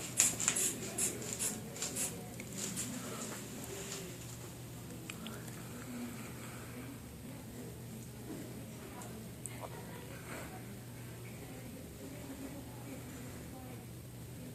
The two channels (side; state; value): both; identical; correlation 1.00